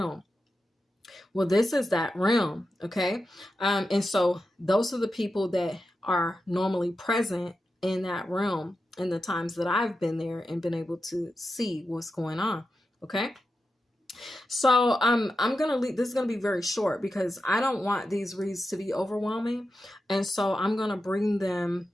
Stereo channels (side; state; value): both; normal; correlation 0.90